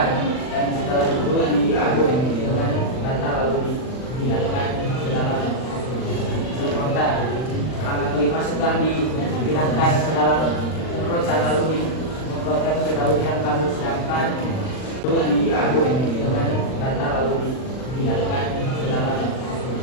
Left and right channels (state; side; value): late; right; 39 ms